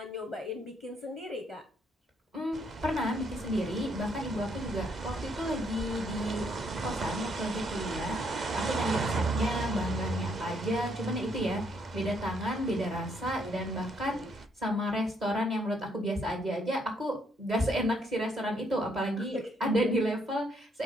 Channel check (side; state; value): both; normal; correlation 0.71